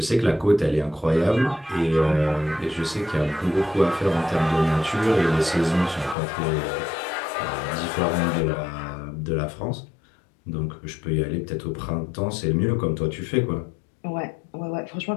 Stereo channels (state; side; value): drops out; right; at 6.2 s